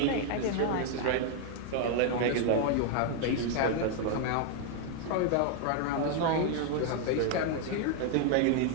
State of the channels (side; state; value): both; different; correlation 0.00